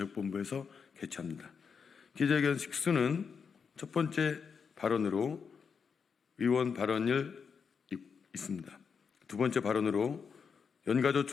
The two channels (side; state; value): right; quieter; 6.1 dB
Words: 개최합니다. 기자회견 식수는 첫 번째 발언으로 의원 발언을 있습니다. 두 번째 발언으로